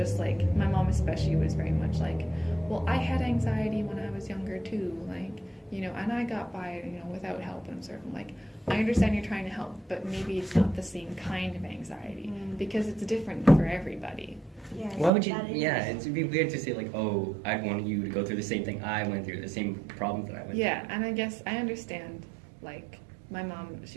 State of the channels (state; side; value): drops out; left; at 15.1 s